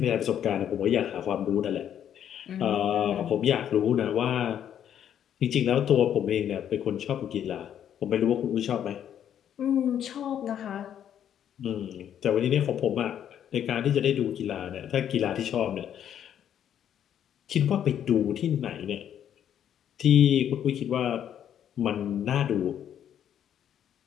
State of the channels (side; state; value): right; quieter; 9.7 dB